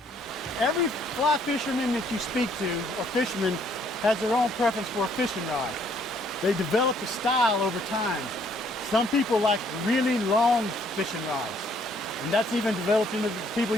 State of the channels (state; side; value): normal; both; correlation 0.65